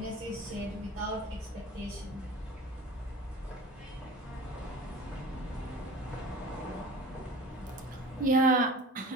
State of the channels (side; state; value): both; normal; correlation 0.40